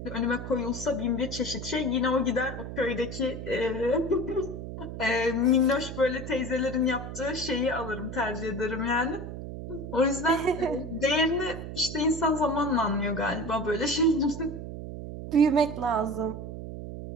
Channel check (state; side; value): noise; right; hum, 8 dB below the sound